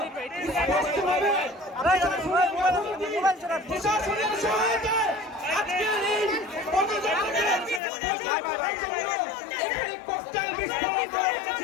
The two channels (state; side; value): drops out; right; at 7.8 s